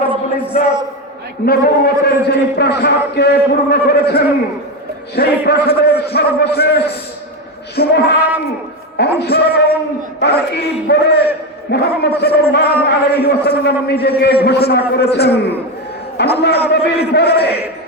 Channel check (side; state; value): both; normal; correlation 0.14